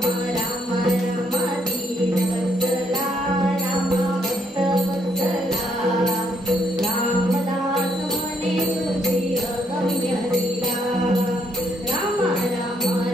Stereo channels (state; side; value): normal; both; correlation 0.72